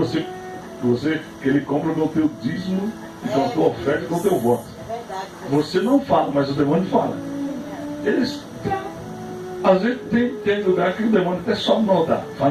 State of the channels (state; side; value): identical; both; correlation 1.00